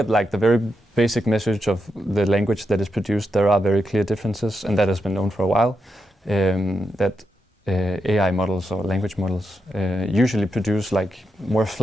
like the very basic message of the language that is produced, there are very clear differences, and that has been known for a while. That AI models or language models usually produce like more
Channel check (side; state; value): both; normal; correlation 0.84